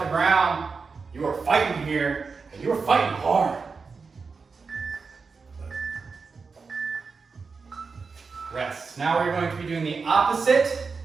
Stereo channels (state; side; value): quieter; left; 4.8 dB